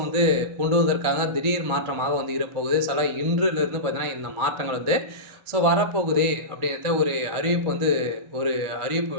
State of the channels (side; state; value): left; late; 1.4 ms